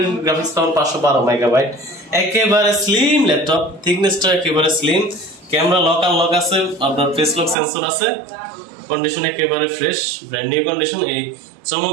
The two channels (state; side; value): drops out; left; at 7.6 s